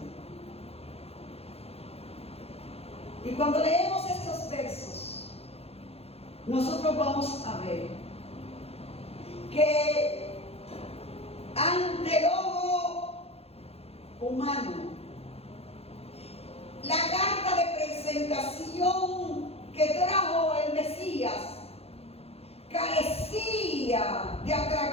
Y cuando leemos estos versos, nosotros vamos a ver que ante el ojo humano, la carta de presentación que trajo el Mesías carecía de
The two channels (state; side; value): late; right; 0.29 ms